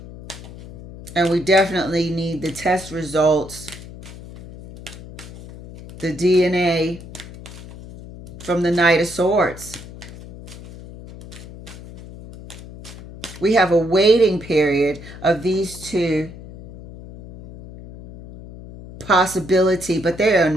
And we definitely need the test results, the DNA from the Knight of Swords. We have a waiting period of these two possibility, but they are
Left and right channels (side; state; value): left; noise; hum, 15 dB below the sound